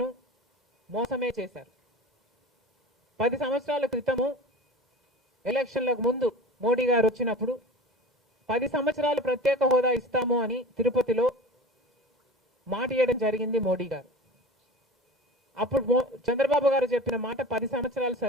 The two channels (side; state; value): both; normal; correlation 0.36